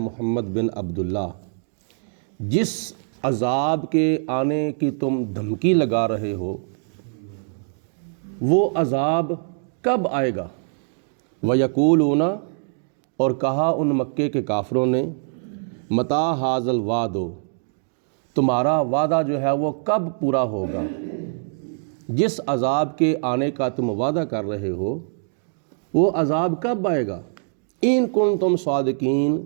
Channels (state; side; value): silent; left; digital silence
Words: محمد بن عبداللہ، جس عذاب کے آنے کی تم دھمکی لگا رہے ہو وہ عذاب کب آئے گا؟ وَيَقُولُونَ، اور کہا ان مکے کے کافروں نے، مَتَىٰ هَٰذَا الْوَعْدُ، تمہارا وعدہ جو ہے وہ کب پورا ہوگا؟ جس عذاب کے آنے کا تم وعدہ کر رہے ہو وہ عذاب کب آئے گا؟ اِن كُنتُمْ